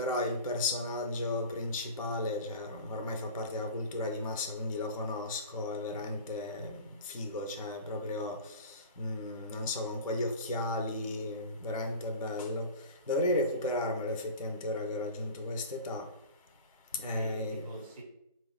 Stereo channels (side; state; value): both; inverted; correlation -0.37